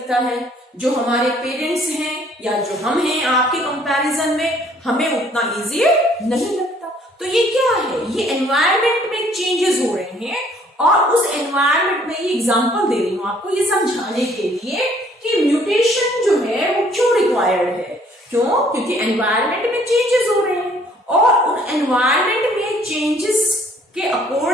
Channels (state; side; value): normal; both; correlation 0.60